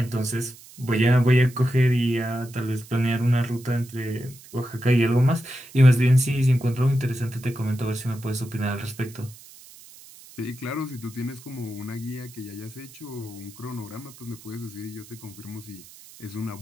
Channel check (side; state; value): right; noise; hiss, 20 dB below the sound